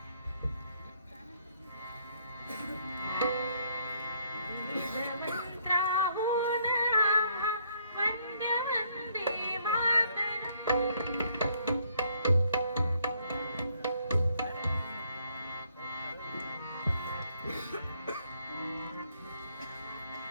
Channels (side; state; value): both; inverted; correlation -0.68